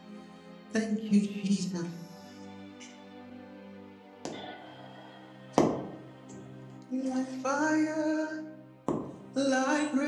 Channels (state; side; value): identical; both; correlation 1.00